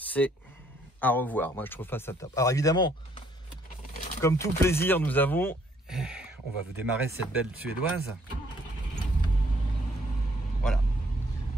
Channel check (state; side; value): normal; both; correlation 0.65